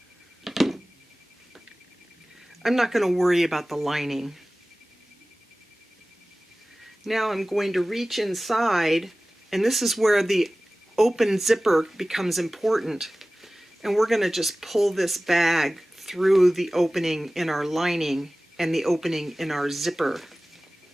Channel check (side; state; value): both; normal; correlation 0.97